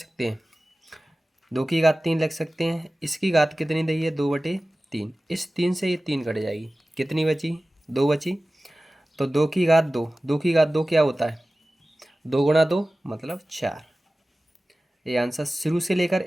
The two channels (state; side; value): normal; both; correlation 0.96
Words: हैं, 2⁻3 लिख सकते हैं। इसकी घात कितनी दी है, 2/3। इस 3 से ये 3 कट जाएगी, कितनी बची, 2 बची। तो 2⁻2, 2⁻2 क्या होता है, 2 × 2 मतलब 4। ये आंसर शुरू से लेकर